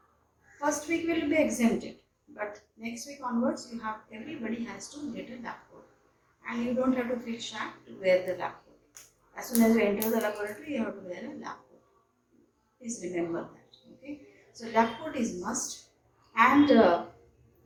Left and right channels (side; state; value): both; identical; correlation 1.00